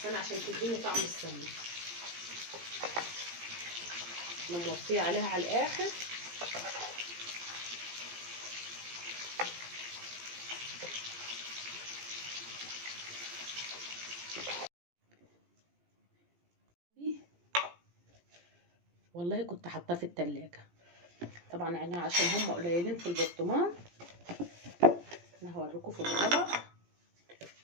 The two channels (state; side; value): late; left; 17 ms